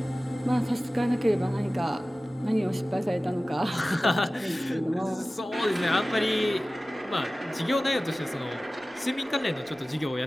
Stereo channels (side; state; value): both; normal; correlation 0.97